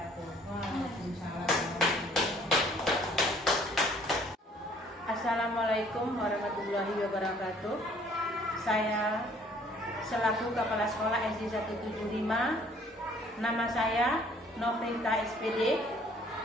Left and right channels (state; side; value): normal; both; correlation 0.58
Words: Assalamualaikum warahmatullahi wabarakatuh. Saya selaku Kepala Sekolah SD 175, nama saya Novrita SPD.